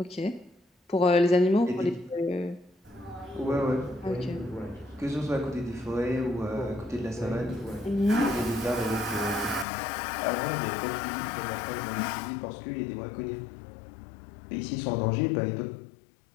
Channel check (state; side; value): drops out; right; at 9.7 s